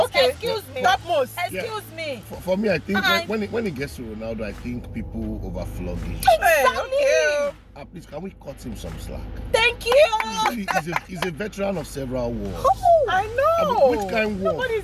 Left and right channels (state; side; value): identical; both; correlation 1.00